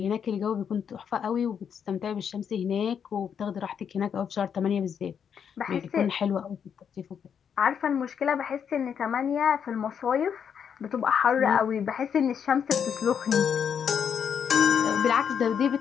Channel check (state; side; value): quieter; right; 7.6 dB